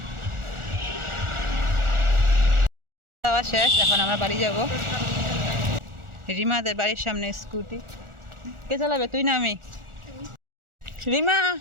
খাওয়া শেষ, এখন আমরা বাড়ি যাব। রিমাদের বাড়ির সামনে স্কুটি। কে চালাবে, তুই না আমি? রিমা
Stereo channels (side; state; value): left; late; 1.4 ms